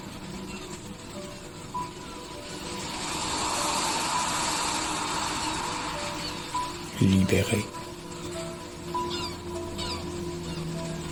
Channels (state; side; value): identical; both; correlation 1.00